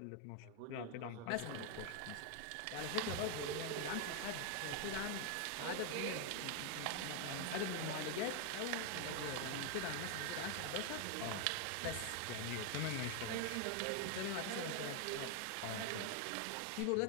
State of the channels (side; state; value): both; different; correlation 0.01